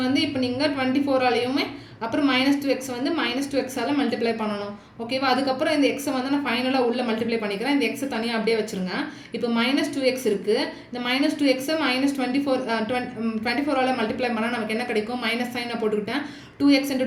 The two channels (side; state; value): both; identical; correlation 1.00